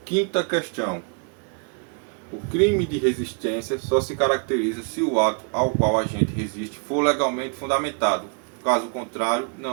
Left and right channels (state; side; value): quieter; left; 37.7 dB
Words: Quinta questão. O crime de resistência só se caracteriza se o ato ao qual a gente resiste for legalmente fundamentado. Caso contrário,